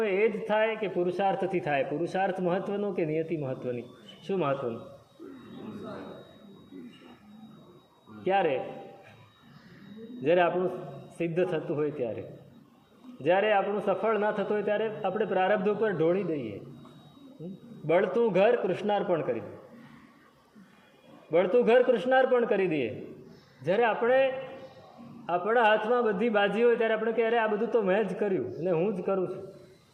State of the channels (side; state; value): both; identical; correlation 1.00